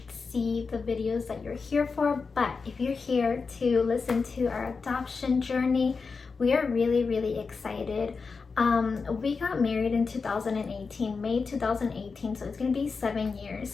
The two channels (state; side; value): quieter; right; 4.8 dB